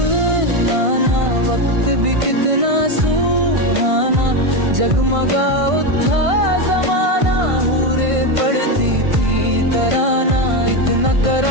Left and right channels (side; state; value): left; late; 1.5 ms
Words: लाना, वक्त भी कितना सुहाना, जगमगा उठा जमाना, हूरे पड़ती थी तराना। इतना